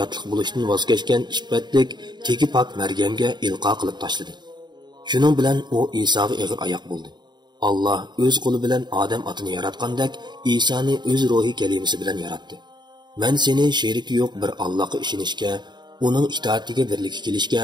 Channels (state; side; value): late; left; 0.21 ms